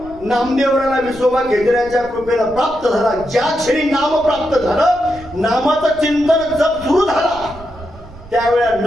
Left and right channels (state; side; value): noise; right; rumble, 18 dB below the sound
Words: नामदेवराला विसोबा घेतल्याच्या कृपेनं प्राप्त झाला. ज्या क्षणी नाम प्राप्त झालं, नामाचं चिंतन जप सुरू झाला, त्यावेळेला